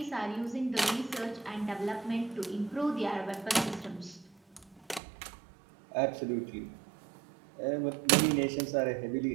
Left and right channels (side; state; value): left; drops out; at 5.0 s